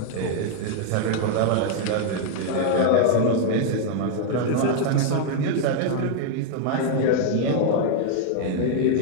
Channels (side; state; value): both; different; correlation 0.00